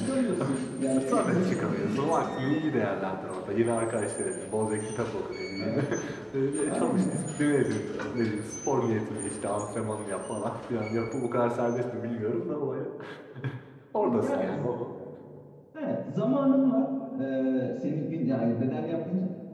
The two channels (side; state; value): both; identical; correlation 1.00